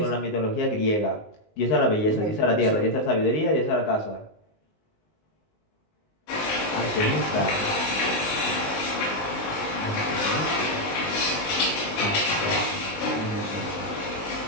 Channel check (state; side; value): late; right; 19 ms